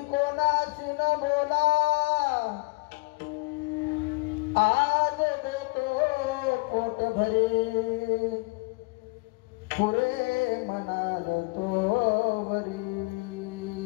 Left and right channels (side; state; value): right; quieter; 28.4 dB